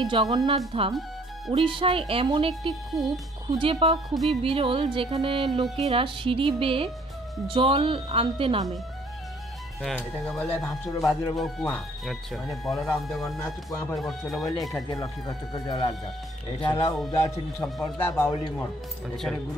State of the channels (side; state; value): both; normal; correlation 0.60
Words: জগন্নাথ ধাম উড়িষ্যায় এমন একটি কূপ খুঁজে পাওয়া খুবই বিরল, যেখানে লোকেরা সিঁড়ি বেয়ে জল আনতে নামে। এটাকে বলে ভাসুর বাজুর কুয়া। মানে বলরাম জগন্নাথ কুয়া পরে বসছিল বলে এখান থেকে লক্ষ্মী কষ্ট করে জল আনতাম। এটা হলো উদাসীন সম্প্রদায় বাউলি মঠ। এখানে